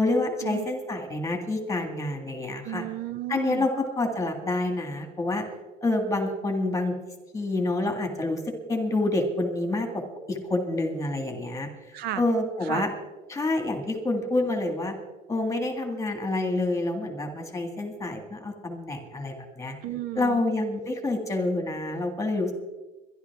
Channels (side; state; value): both; normal; correlation 0.73